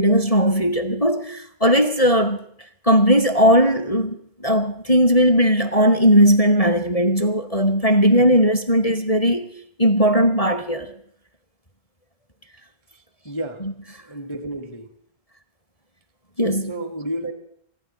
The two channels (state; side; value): late; right; 1.7 ms